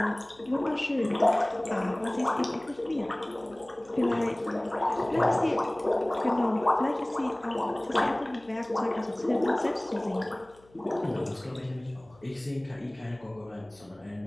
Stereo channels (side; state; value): left; noise; hum, 29 dB below the sound